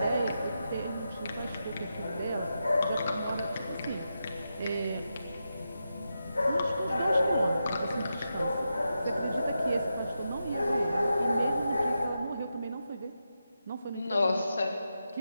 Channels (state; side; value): inverted; both; correlation -0.87